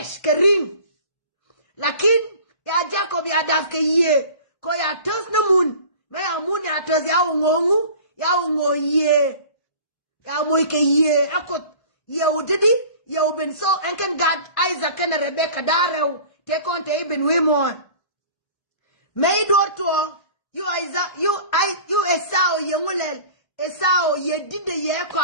ka ring. Lakin ya Jacob ya daf ka ye. Ko ya tos na mun. Me ya mun ya tos ya ungongu. Ya ungo ye. Ya moy ka ye. Akot ye udidi. Ye uben so enken God Isaac and Rebecca darew. Te konte iben wimon. Me do to you Isaac you Esau ye ngulel. Esau ye dide ye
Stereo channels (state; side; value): late; right; 1.5 ms